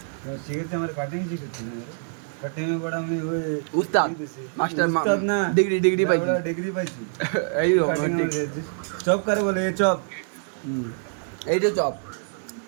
मैं सीखते हमारे कटिंग सीखते हैं कटिंग में बड़ा मैं वो উস্তাদ মাস্টার ডিগ্রি পাইছি डिग्री पाई এই चॉप करे बोले ये चॉप এইটা চপ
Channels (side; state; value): left; silent; digital silence